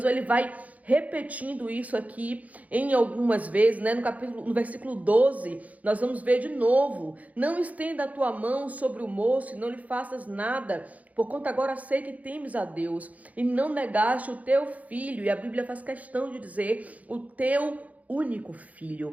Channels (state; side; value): late; left; 0.072 ms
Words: ele vai repetindo isso aqui em algumas vezes, né? No versículo 12, nós vamos ver de novo: não estenda a tua mão sobre o moço e não lhe faças nada, porquanto agora sei que temes a Deus e não negaste o teu filho. E a Bíblia faz questão de dizer o teu único